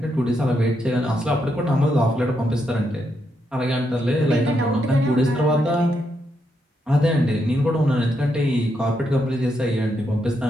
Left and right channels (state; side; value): normal; both; correlation 0.80